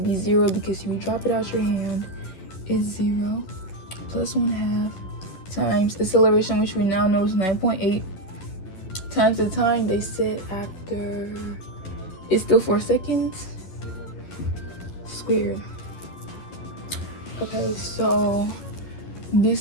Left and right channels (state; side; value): late; right; 11 ms